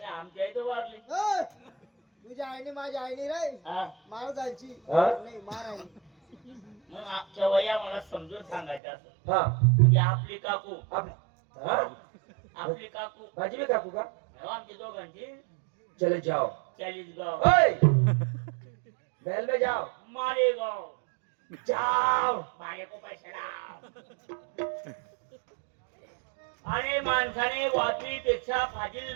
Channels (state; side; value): drops out; left; at 8.8 s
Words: आमची आई तर वारली. तुझ्या आईने माझ्या आईने रे हा, मार जायची हा? नाही मार आहे मग आमच्या वया मला समजून सांगायचं असं हा म्हणजे आपली काकू हा आपली काकू माझी भी काकू का हो, आमची दोघांची चले जाओ 40 गाव ओए महल में जाओ मालेगाव जाओ माझे को पैसे लाव. आणि माणसाने वाचवीपेक्षा